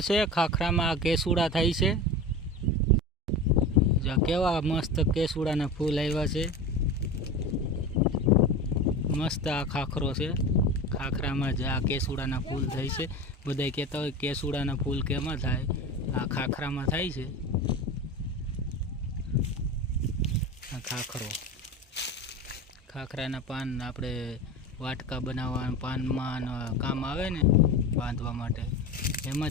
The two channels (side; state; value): both; normal; correlation 0.29